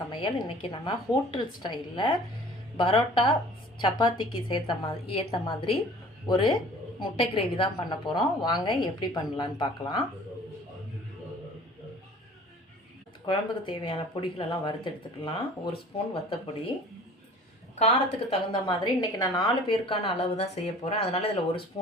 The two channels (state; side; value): normal; both; correlation 0.47